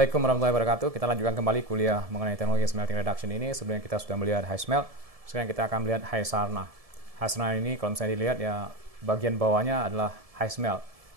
warahmatullahi wabarakatuh. Kita lanjutkan kembali kuliah mengenai teknologi smelting reduction ini. Sebelumnya kita sudah melihat high smelt, sekarang kita akan melihat high sarna. High sarna ini kalau misalnya dilihat ya bagian bawahnya adalah high smelt.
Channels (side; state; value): left; late; 1.7 ms